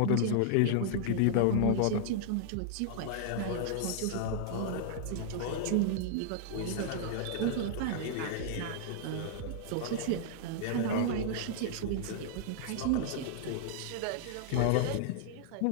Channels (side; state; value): both; different; correlation -0.01